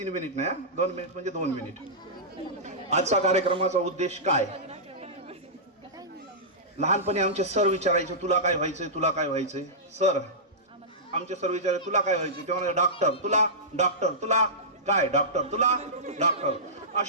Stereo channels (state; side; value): normal; both; correlation -0.16